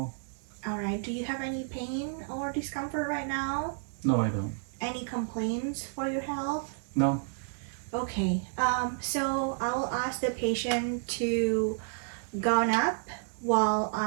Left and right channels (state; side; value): silent; left; digital silence